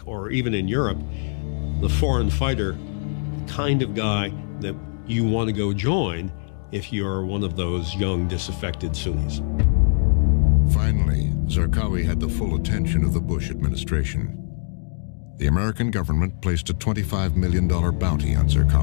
or even in Europe the foreign fighter, the kind of guy that you want to go join if you're one of those young, disaffected Sunnis. Finally, Zarqawi had the full attention of the Bush administration. The American government placed a $25 million bounty on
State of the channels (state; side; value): silent; right; digital silence